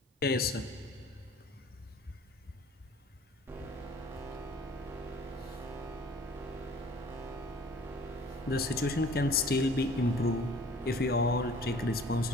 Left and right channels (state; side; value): normal; both; correlation 0.50